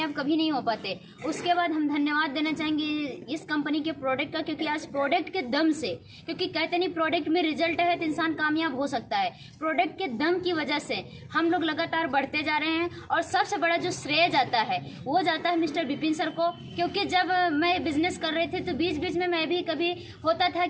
कभी नहीं हो पाते। उसके बाद हम धन्यवाद देना चाहेंगे इस कंपनी के प्रोडक्ट का, क्योंकि आज प्रोडक्ट के दम से, क्योंकि कहते नहीं प्रोडक्ट में रिजल्ट है तो इंसान कामयाब हो सकता है, प्रोडक्ट के दम की वजह से हम लोग लगातार बढ़ते जा रहे हैं। और सबसे बड़ा जो श्रेय जाता है वो जाता है मिस्टर विपिन सर को, क्योंकि जब मैं बिजनेस कर रही थी तो बीच में मैं भी कभी होता था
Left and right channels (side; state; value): both; identical; correlation 1.00